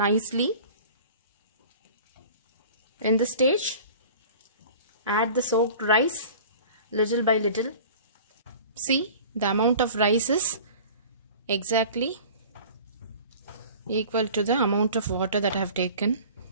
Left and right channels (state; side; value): inverted; both; correlation -0.43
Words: In this stage, add the soaked rice little by little. See, the amount of rice is exactly equal to the amount of water that I have taken.